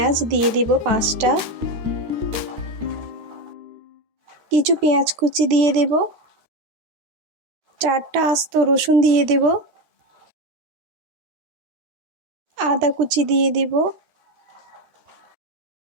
দিয়ে দেব 5টা। কিছু পেঁয়াজ কুচি দিয়ে দেব, 4টা আস্ত রসুন দিয়ে দেব, আদা কুচি দিয়ে দেব,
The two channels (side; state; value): left; late; 13 ms